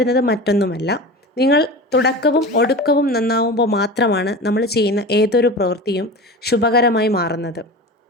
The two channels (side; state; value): both; normal; correlation 0.31